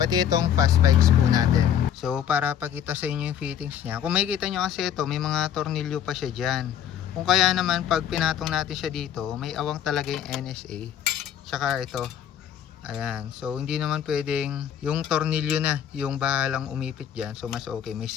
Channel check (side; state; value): right; quieter; 9.5 dB